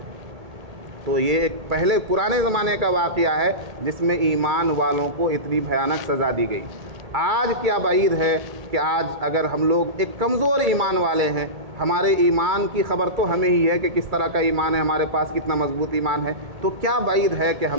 تو یہ ایک پہلے پرانے زمانے کا واقعہ ہے جس میں ایمان والوں کو اتنی بھیانک سزا دی گئی۔ آج کیا بعید ہے کہ آج اگر ہم لوگ ایک کمزور ایمان والے ہیں، ہمارے ایمان کی خبر تو ہمیں ہی ہے کہ کس طرح کا ایمان ہے ہمارے پاس، کتنا مضبوط ایمان ہے، تو کیا بعید ہے کہ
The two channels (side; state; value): left; late; 2.3 ms